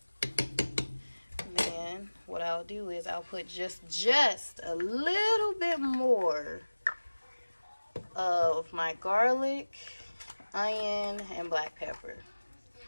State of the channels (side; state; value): both; inverted; correlation -1.00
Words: and then then what I'll do is I'll put just a little bit more of my garlic, onion, and black pepper.